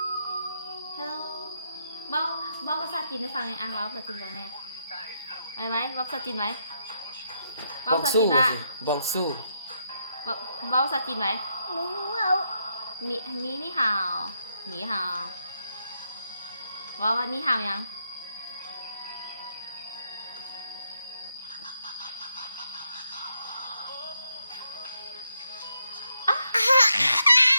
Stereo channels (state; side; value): inverted; both; correlation -0.80